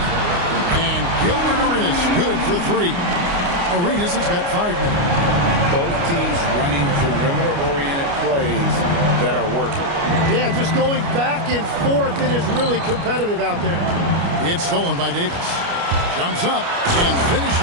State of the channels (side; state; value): left; late; 29 ms